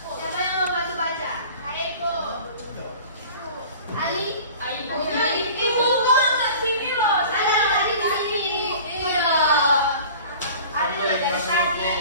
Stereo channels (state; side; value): inverted; both; correlation -0.42